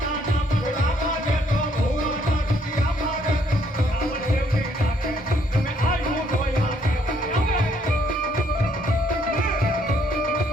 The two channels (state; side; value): normal; both; correlation 0.68